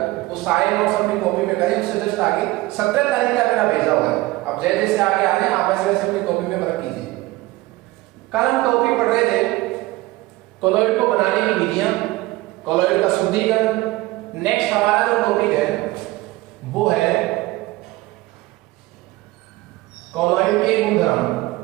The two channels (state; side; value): quieter; left; 19.3 dB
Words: वो सारे नोट्स अपनी कॉपी में करें। उससे जस्ट आगे 17 तारीख का मेरा भेजा हुआ है। अब जैसे जैसे आगे आ रहे हैं आप वैसे वैसे अपनी कॉपी में रख कीजिए। कल हम टॉपिक पढ़ रहे थे कोलॉइड को बनाने की विधियां, कोलॉइड का शुद्धिकरण। नेक्स्ट हमारा जो टॉपिक है वो है कोलॉइड के गुणधर्म।